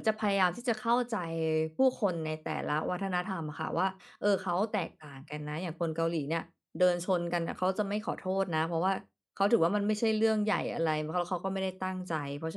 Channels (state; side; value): identical; both; correlation 1.00